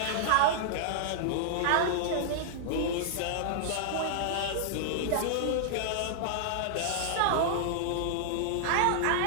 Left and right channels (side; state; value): both; different; correlation -0.01